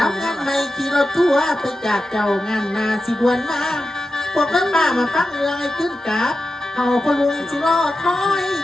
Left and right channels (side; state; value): both; normal; correlation 0.91